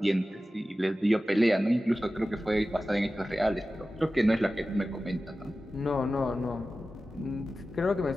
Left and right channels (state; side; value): normal; both; correlation 0.95